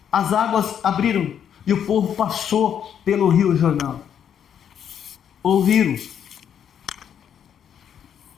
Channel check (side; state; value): right; quieter; 8.8 dB